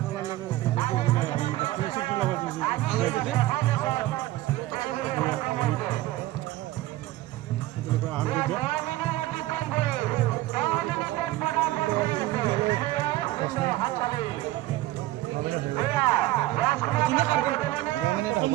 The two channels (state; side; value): quieter; left; 16.6 dB